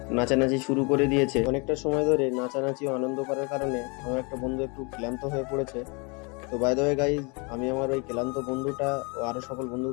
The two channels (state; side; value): quieter; right; 31.0 dB